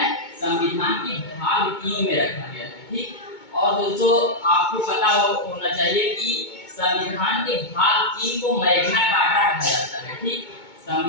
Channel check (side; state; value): right; late; 2.2 ms